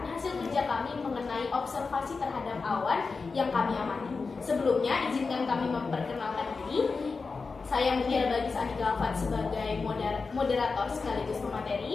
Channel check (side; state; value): right; quieter; 4.5 dB